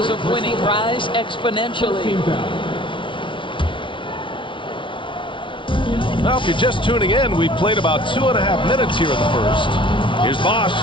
of winning rise exponentially. Well, if you're just tuning in, we've played about 2.5 minutes here in the first. Here's Bosch.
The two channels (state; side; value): late; right; 0.25 ms